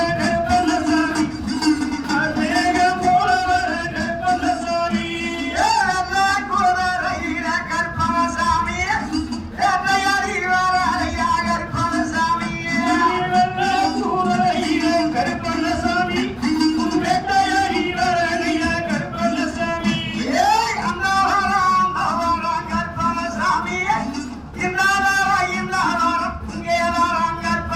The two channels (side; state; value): both; identical; correlation 1.00